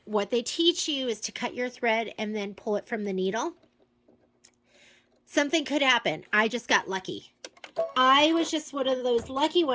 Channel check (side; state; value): both; identical; correlation 1.00